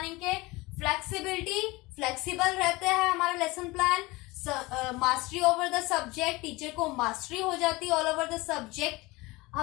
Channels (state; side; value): quieter; right; 22.2 dB